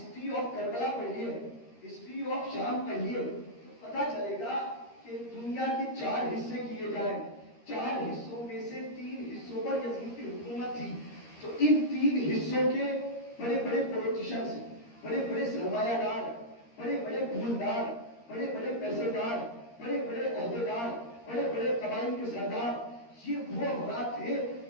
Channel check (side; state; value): right; late; 13 ms